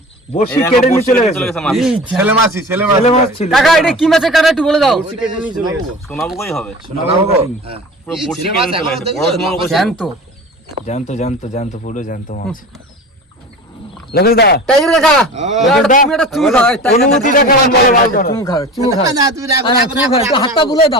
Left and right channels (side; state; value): both; normal; correlation 0.35